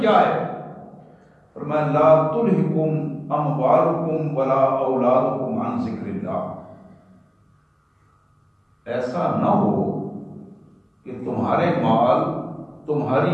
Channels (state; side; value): identical; both; correlation 1.00